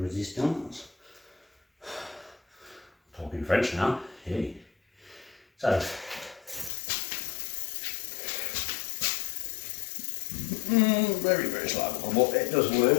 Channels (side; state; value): right; drops out; at 6.7 s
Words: Talking French now. Hey. So. Very, very slight buckle, but it does